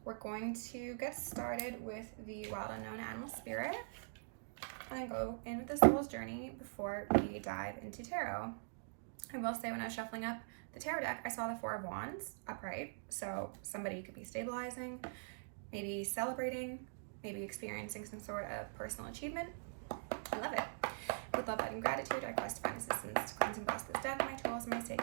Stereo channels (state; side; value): silent; left; digital silence